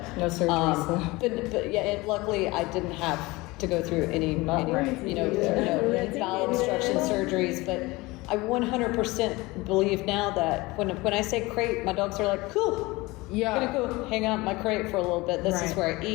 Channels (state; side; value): quieter; right; 22.1 dB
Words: no surgeries. but yeah, luckily I didn't have to go through any bowel obstruction surgeries. But I 100% believe now that when I say crate, my dogs are like, cool. Yeah, I'm gonna go hang out in my crate for a little bit. This is where I